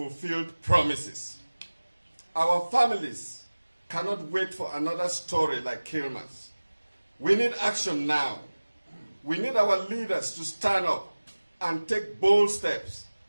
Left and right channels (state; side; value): inverted; both; correlation -1.00